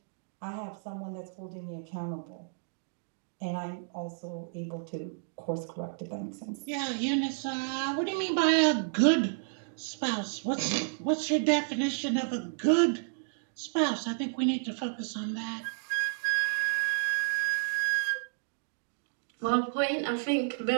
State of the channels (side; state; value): left; silent; digital silence